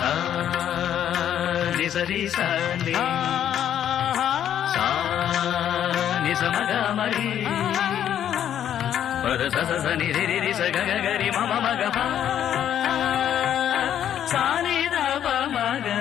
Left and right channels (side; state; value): right; quieter; 10.1 dB